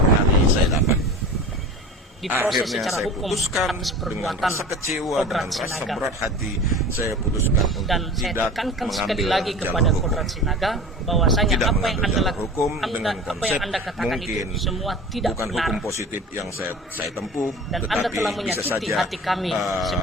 hari saya dapat. diproses Akhirnya secara saya hukum putuskan atas dengan perbuatan rasa kecewa, Kodrat dengan rasa Sinaga. berat hati, saya putuskan untuk Dan saya tidak tekankan sekali mengambil lagi jalur kepada hukum. Kodrat Sinaga bahwasanya Tidak apa yang mengambil Anda jalur lakukan, hukum dengan apa konsep yang Anda katakan mungkin itu semua tidak bukan benar. hukum positif yang saya tempuh, Dan tetapi Anda telah bisa menyakiti saja hati kami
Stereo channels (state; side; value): normal; both; correlation 0.36